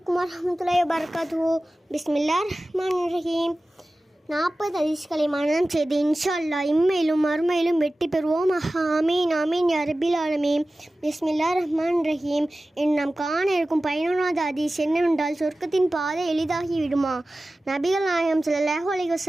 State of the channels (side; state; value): both; normal; correlation 0.96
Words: வரஹ்மத்துல்லாஹி வபரகாத்துஹு. பிஸ்மில்லாஹிர்ரஹ்மானிர்ரஹீம். 40 ஹதீஸ்களை மனனம் செய்து இன்ஷா அல்லாஹ் இம்மையிலும் மறுமையிலும் வெற்றி பெறுவோம். ஆமீன் ஆமீன் யா ரப்பில் ஆலமீன். பிஸ்மில்லாஹிர்ரஹ்மானிர்ரஹீம். நாம் காண இருக்கும் 11வது ஹதீஸ் என்னவென்றால், சொர்க்கத்தின் பாதை எளிதாகி விடுமா? நபிகள் நாயகம் ஸல்லல்லாஹு அலைஹி